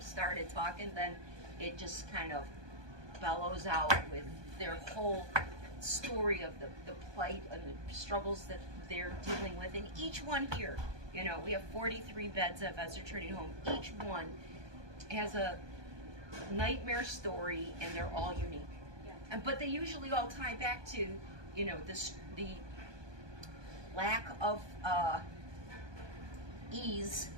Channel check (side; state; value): left; late; 1.2 ms